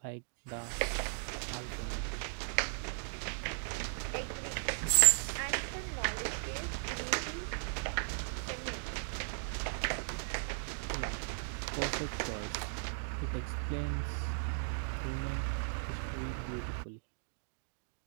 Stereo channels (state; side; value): silent; left; digital silence